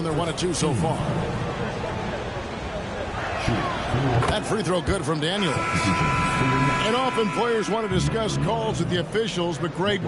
they're 1 of 2 so far. That free throw good from Daniels. And often players want to discuss calls with the officials, but Greg,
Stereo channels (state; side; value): identical; both; correlation 1.00